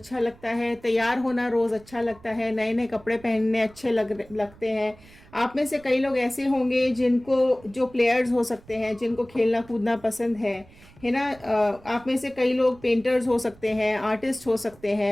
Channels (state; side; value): noise; right; rumble, 24 dB below the sound